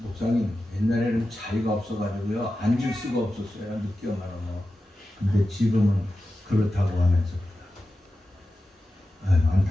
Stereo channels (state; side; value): normal; both; correlation 0.93